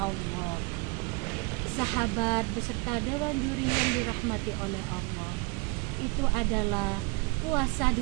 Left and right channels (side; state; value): left; quieter; 28.0 dB